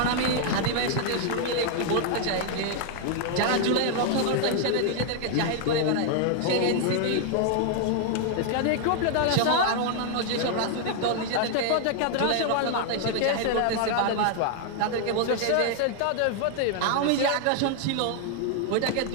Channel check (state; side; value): different; both; correlation 0.00